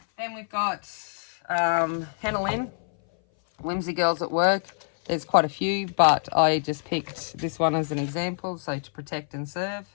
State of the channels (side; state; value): right; silent; 59 dB below the other